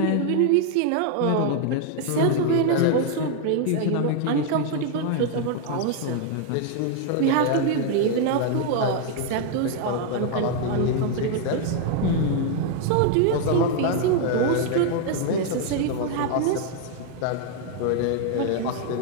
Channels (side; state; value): both; different; correlation 0.00